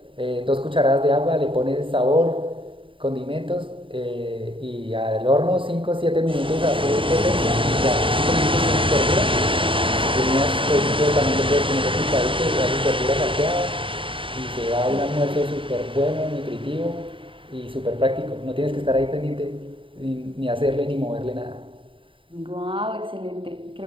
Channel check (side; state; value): left; late; 0.25 ms